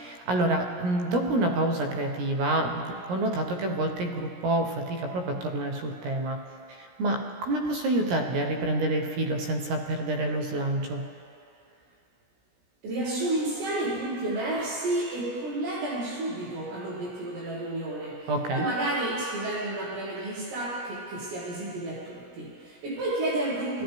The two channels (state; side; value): late; left; 17 ms